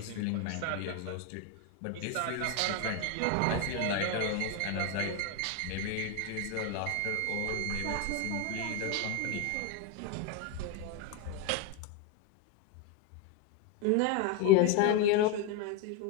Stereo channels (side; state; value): both; different; correlation 0.02